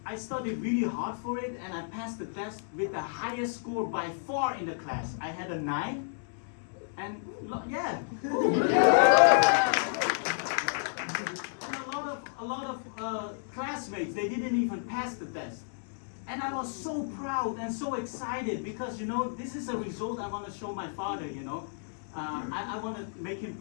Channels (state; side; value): silent; right; digital silence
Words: I studied really hard for it, and I passed the test with the highest score by far in the class. I had a 9. And yeah, and a lot of classmates, they didn't even pass the test. And I was so proud and so excited because, you know, this is a result I want to show my father, you know. I want to make him